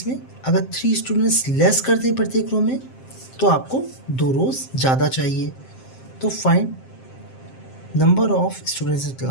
में अगर 3 स्टूडेंट्स लेस कर दें प्रत्येक रो में, तो आपको 2 रोज ज़्यादा चाहिए। तो find number of students in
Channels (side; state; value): right; late; 7.6 ms